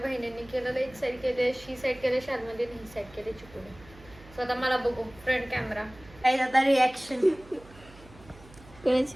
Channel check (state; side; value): noise; right; hum, 22 dB below the sound